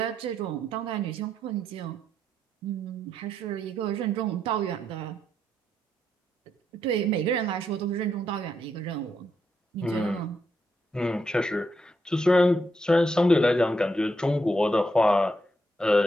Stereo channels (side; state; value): both; normal; correlation 0.80